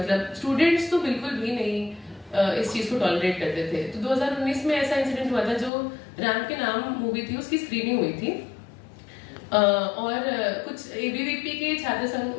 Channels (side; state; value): right; drops out; at 5.7 s